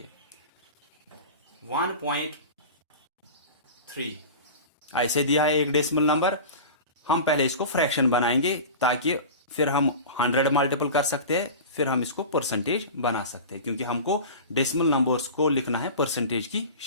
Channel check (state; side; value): inverted; both; correlation -0.33